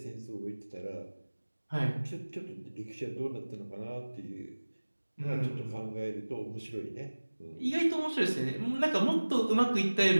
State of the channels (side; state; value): both; inverted; correlation -1.00